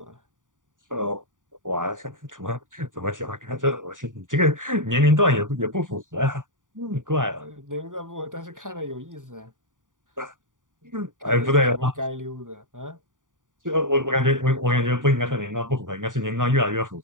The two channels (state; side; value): late; left; 0.88 ms